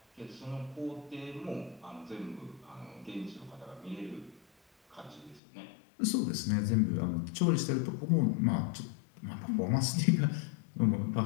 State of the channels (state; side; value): drops out; right; at 5.4 s